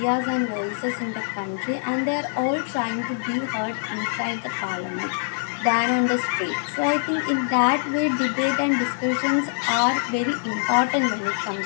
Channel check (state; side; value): silent; right; digital silence